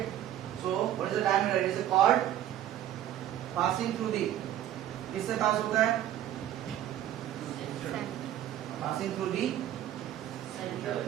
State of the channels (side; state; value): left; quieter; 11.9 dB